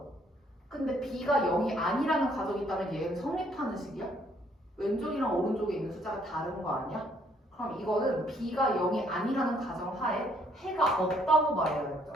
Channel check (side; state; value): both; normal; correlation 0.66